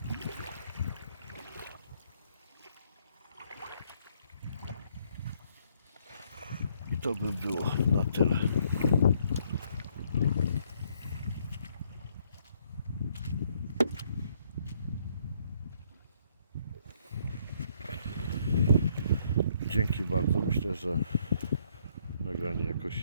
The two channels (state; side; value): inverted; both; correlation -0.68